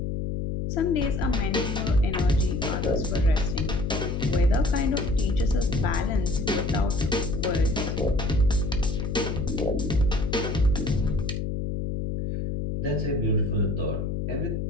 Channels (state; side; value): noise; left; hum, 2 dB below the sound